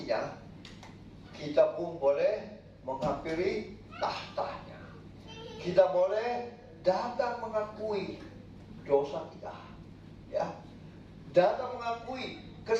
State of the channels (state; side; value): identical; both; correlation 1.00